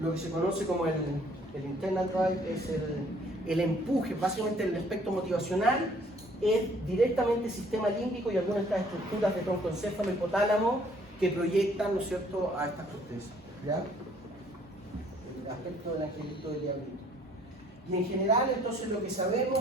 lo que se conoce como el internal drive es el empuje, básicamente el aspecto motivacional, es directamente el sistema límbico y algunas de estas estructuras de troncoencéfalo y hipotálamo que proyectan, ¿no es cierto?, a estas cortezas, ¿ya? El aspecto del angelito del diablito. Y en general, entonces, lo que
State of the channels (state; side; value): normal; both; correlation 0.60